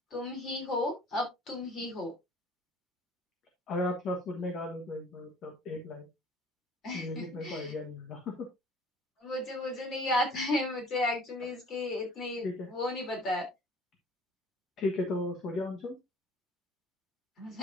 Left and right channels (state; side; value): normal; both; correlation 0.51